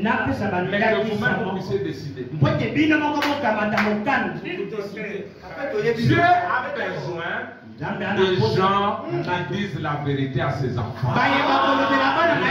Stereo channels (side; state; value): both; identical; correlation 1.00